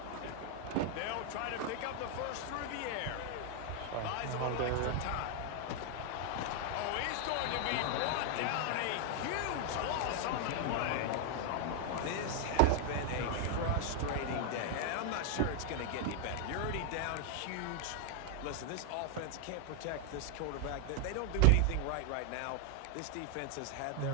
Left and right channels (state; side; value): different; both; correlation 0.00